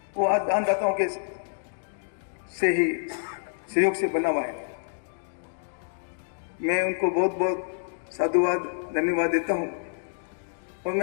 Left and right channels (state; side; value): silent; right; digital silence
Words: वो आज दानदाताओं के से ही सहयोग से बना हुआ है। मैं उनको बहुत बहुत साधुवाद, धन्यवाद देता हूँ। और